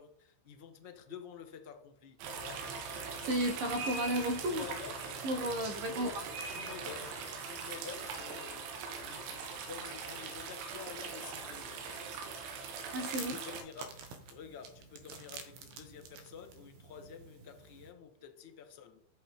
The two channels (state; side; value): late; left; 15 ms